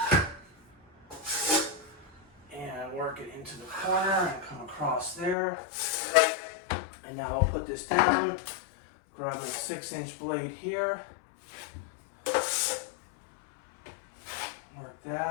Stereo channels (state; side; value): drops out; right; at 5.4 s